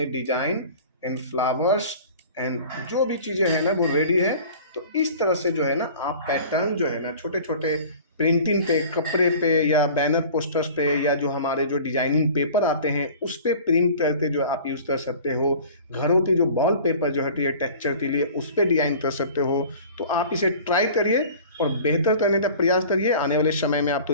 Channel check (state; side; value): inverted; both; correlation -0.43